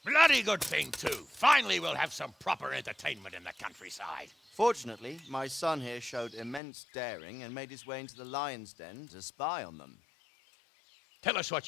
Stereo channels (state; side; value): drops out; right; at 6.6 s